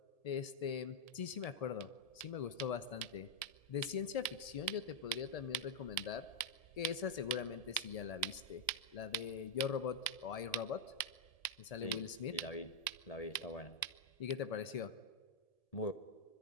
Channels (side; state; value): right; late; 1.7 ms